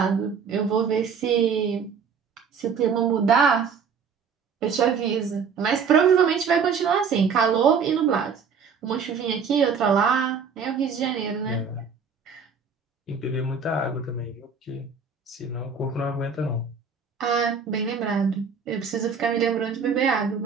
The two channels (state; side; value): quieter; left; 6.0 dB